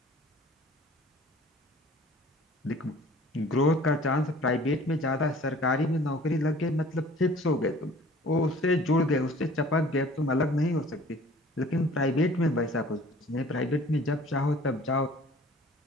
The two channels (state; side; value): normal; both; correlation 0.49